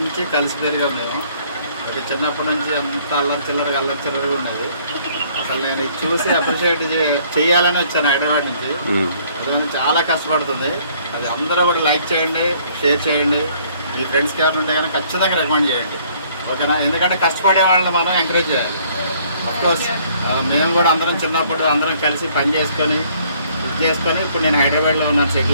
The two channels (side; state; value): both; inverted; correlation -0.61